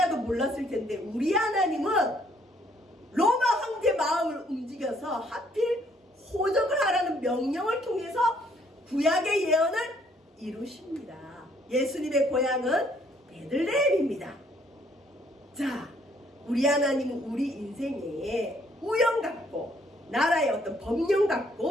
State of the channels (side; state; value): both; normal; correlation 0.66